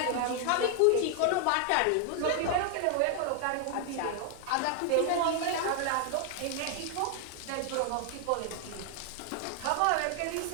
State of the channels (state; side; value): different; both; correlation 0.00